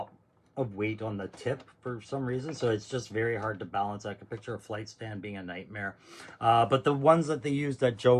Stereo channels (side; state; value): both; identical; correlation 1.00